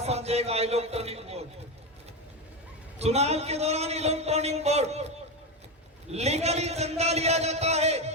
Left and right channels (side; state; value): both; normal; correlation 0.15